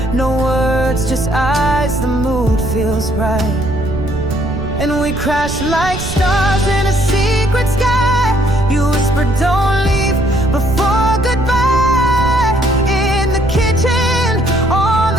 no words, just eyes, the mood feels right. And we crash like stars in a secret sky. You whisper, don't leave before goodbye. In the kitchen, on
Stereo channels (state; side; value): noise; right; rumble, 8 dB below the sound